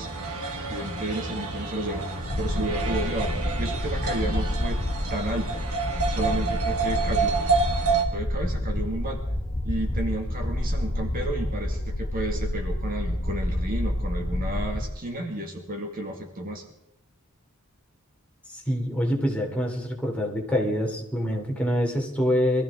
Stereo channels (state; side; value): normal; both; correlation 0.64